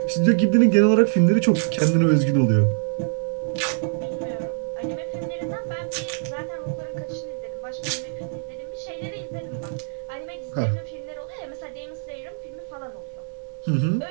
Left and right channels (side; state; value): left; silent; digital silence